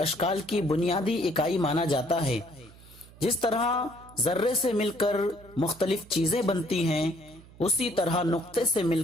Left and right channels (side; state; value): right; noise; hum, 22 dB below the sound